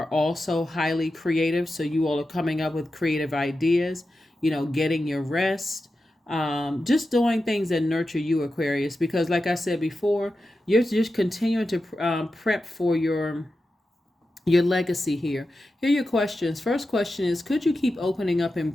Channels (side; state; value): both; normal; correlation 0.91